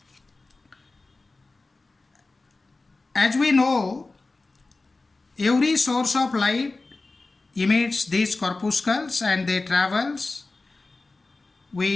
As we know, every source of light emits these corpuscles and they travels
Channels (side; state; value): right; quieter; 3.4 dB